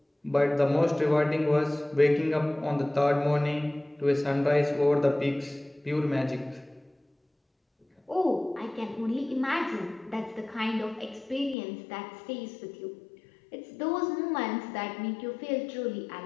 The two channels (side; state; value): right; drops out; at 11.6 s